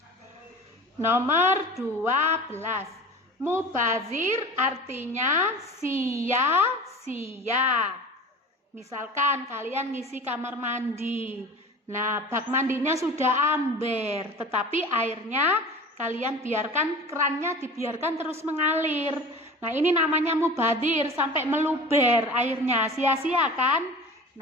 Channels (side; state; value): both; normal; correlation 0.37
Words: Nomor 12. Mubazir artinya sia-sia. Misalkan kalian ngisi kamar mandi. Nah, bak mandinya sudah amber, tetapi airnya kalian biarkan, kerannya dibiarkan terus mengalir. Nah, ini namanya mubazir, sampai meluber airnya, sia-sia kan?